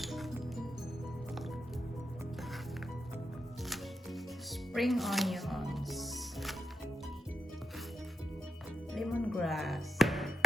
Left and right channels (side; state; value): both; normal; correlation 0.87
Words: Spring onions, lemongrass,